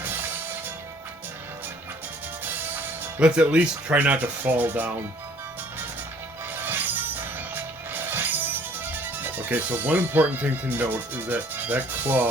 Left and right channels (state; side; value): normal; both; correlation 0.57